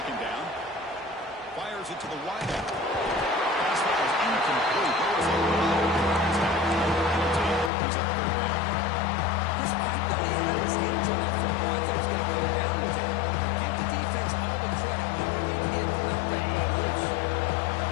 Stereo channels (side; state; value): right; drops out; at 7.7 s